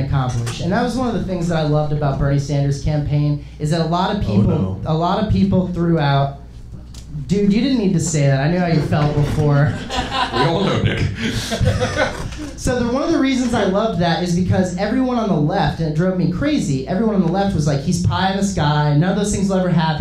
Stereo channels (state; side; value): identical; both; correlation 1.00